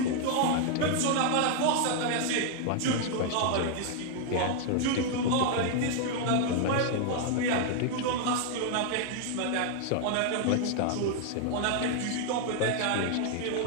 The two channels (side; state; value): both; different; correlation 0.00